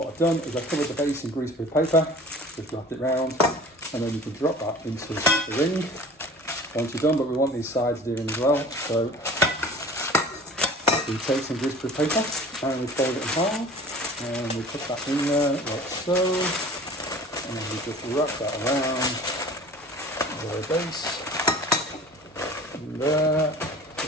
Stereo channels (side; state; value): both; normal; correlation 0.44